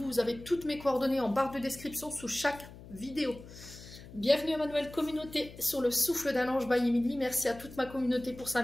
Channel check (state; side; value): noise; left; hum, 17 dB below the sound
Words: vous avez toutes mes coordonnées en barre de description sous chaque vidéo. Bienvenue à ma nouvelle communauté sur le souffle d'un ange by Emily. Merci à toute ma communauté pour sa